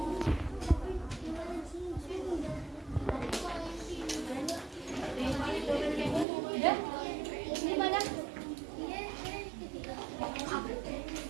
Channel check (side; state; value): left; drops out; at 6.2 s